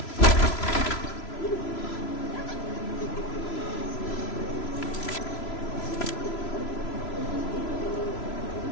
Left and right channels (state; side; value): late; right; 3.0 ms